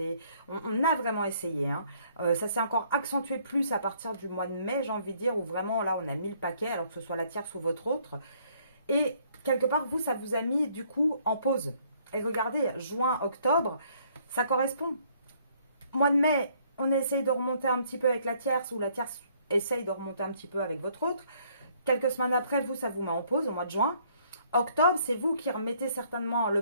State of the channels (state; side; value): inverted; both; correlation -0.64